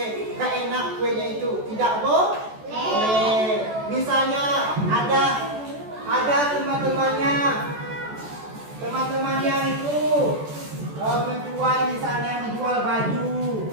gak enak kuenya itu, tidak boleh. Misalnya ada teman-temannya itu menjual baju.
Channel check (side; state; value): left; late; 14 ms